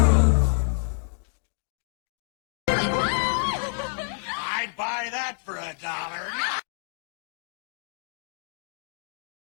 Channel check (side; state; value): right; silent; digital silence